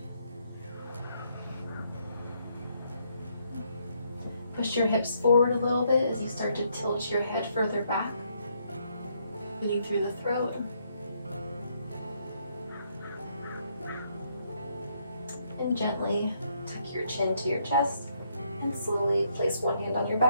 Push your hips forward a little bit as you start to tilt your head further back, breathing through the throat. And gently tuck your chin to your chest and slowly place one hand on your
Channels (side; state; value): both; inverted; correlation -0.73